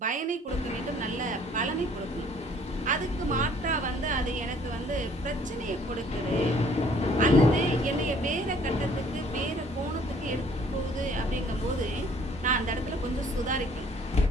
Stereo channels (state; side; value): normal; both; correlation 0.58